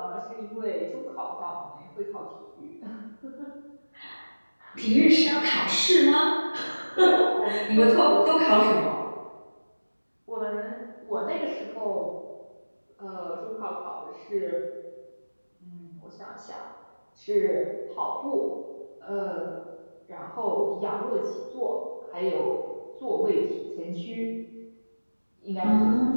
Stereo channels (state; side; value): inverted; both; correlation -1.00